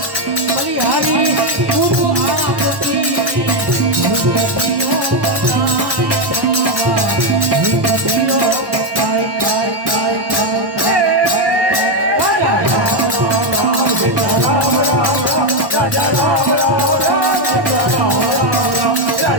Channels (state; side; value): late; left; 1.1 ms